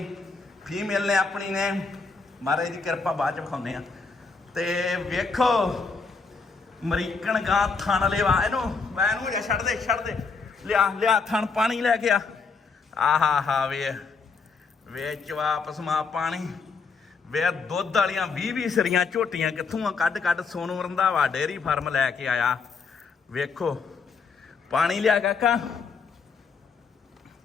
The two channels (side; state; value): right; quieter; 4.8 dB